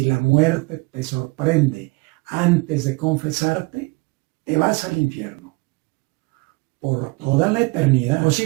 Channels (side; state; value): left; quieter; 26.8 dB